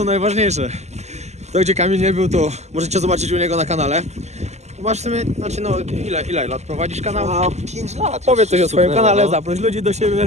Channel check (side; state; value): left; late; 0.33 ms